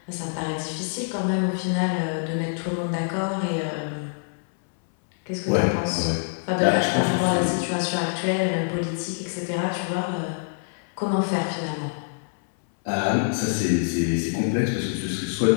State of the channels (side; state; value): right; silent; 62 dB below the other